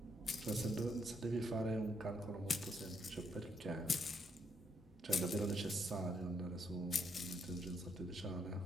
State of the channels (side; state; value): both; normal; correlation 0.75